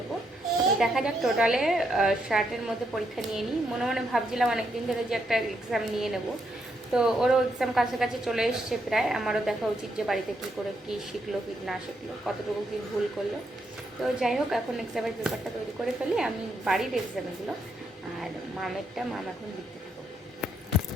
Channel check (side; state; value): both; normal; correlation 0.78